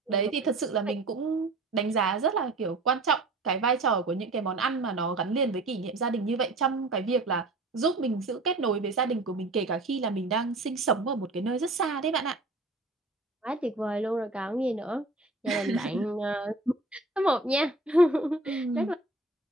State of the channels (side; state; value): left; quieter; 3.1 dB